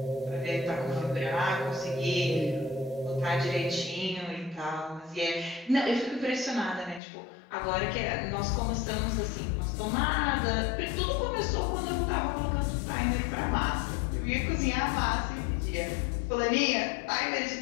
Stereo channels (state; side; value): drops out; right; at 7.0 s